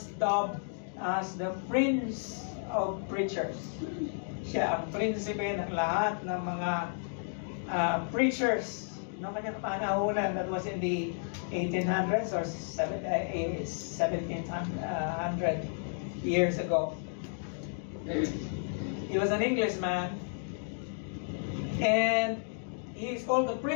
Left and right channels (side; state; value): right; silent; digital silence